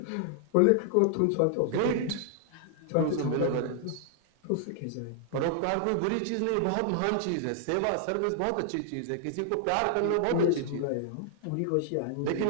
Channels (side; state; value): both; different; correlation 0.00